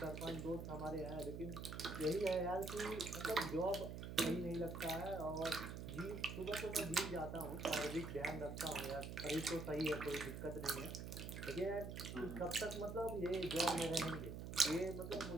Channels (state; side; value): noise; right; hum, 7 dB below the sound